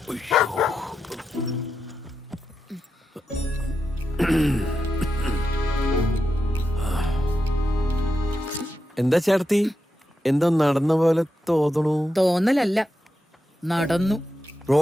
എന്താ ചേർത്തി, എന്താ നടന്ന പോലെ തോന്നണു? തോന്നലല്ല, നടന്നു.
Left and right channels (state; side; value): normal; both; correlation 0.87